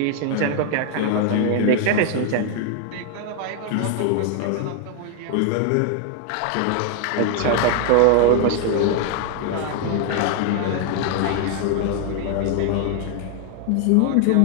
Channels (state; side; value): different; both; correlation 0.00